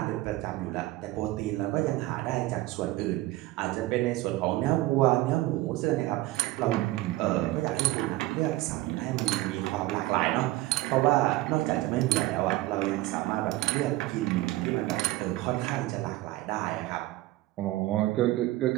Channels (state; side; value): quieter; left; 17.7 dB